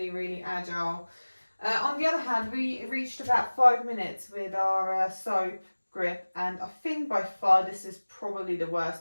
agile. On the other hand, we reached about 5 minutes with our soap grip, and I think by far this is probably the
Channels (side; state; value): both; inverted; correlation -1.00